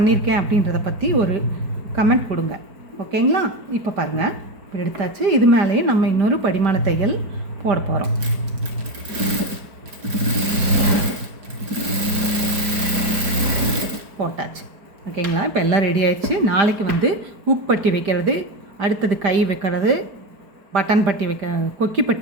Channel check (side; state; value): left; late; 5.0 ms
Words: அப்படின்றத பற்றி ஒரு கமெண்ட் கொடுங்க, ஓகேங்களா. இப்போ பாருங்கள் இப்படி எடுத்தாச்சு. இது மேலேயே நம்ம இன்னொரு படிமான தையல் போட போகிறோம். போட்டாச்சு, ஓகேங்களா. இப்போ எல்லாம் ரெடி ஆயிடுச்சு. நாளைக்கு வந்து ஹூக் பட்டி வைக்கிறது, அடுத்தது கை வைக்கிறது, பட்டன் பட்டி கொக்கி